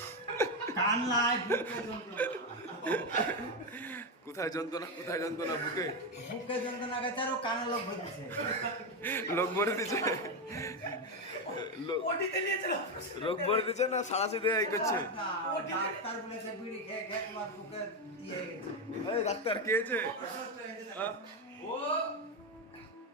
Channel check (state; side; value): normal; both; correlation 0.09